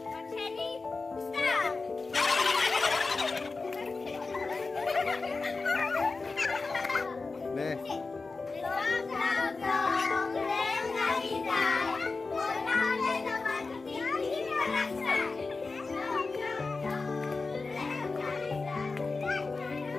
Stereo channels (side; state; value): right; quieter; 4.0 dB